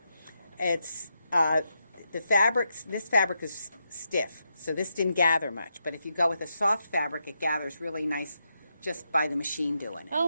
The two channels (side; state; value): both; inverted; correlation -0.84